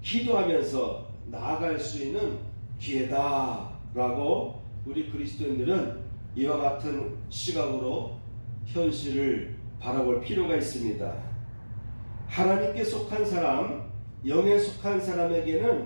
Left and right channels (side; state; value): both; inverted; correlation -1.00